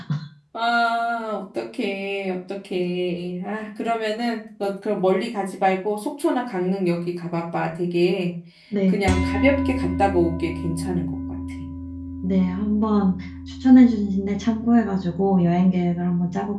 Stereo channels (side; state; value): both; identical; correlation 1.00